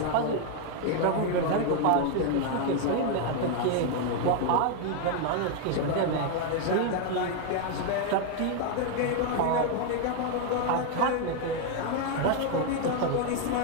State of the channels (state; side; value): different; both; correlation 0.01